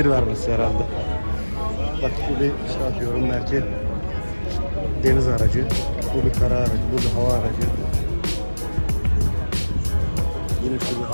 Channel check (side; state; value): both; inverted; correlation -1.00